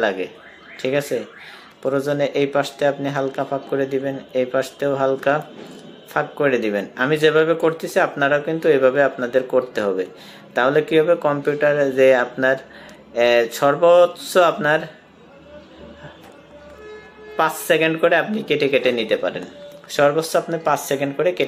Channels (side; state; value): both; identical; correlation 1.00